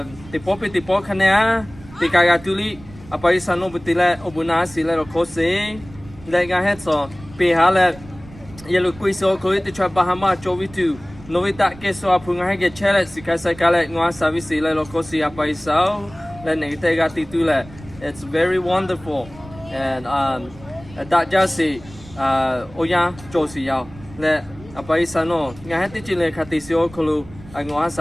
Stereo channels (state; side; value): noise; right; rumble, 19 dB below the sound